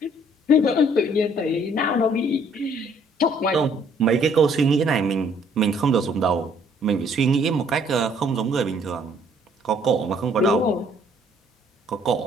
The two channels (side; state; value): both; normal; correlation 0.62